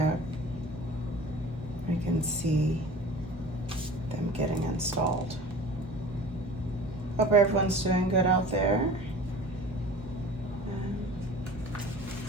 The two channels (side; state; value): both; normal; correlation 0.41